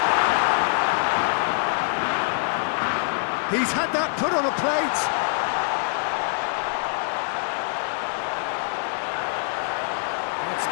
He's had that put on a plate. That's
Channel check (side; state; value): right; silent; 62 dB below the other